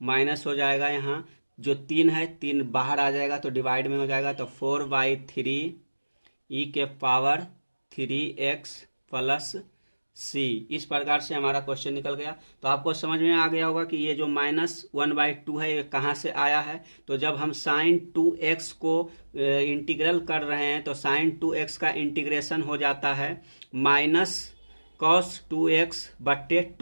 माइनस हो जाएगा, यहाँ जो 3 है 3 बाहर आ जाएगा तो डिवाइड में हो जाएगा, तो 4/3 e के पावर 3x प्लस c। इस प्रकार से हमारा क्वेश्चन निकल गया। तो आपको समझ में आ गया होगा कि ये जो माइनस 1/2 है ये कहाँ से आया है। तो जब हम साइन 2x को इंटीग्रल कर रहे हैं तो साइन 2x का इंटीग्रेशन हो जाता है माइनस कॉस 2x बट्टे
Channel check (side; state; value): both; inverted; correlation -1.00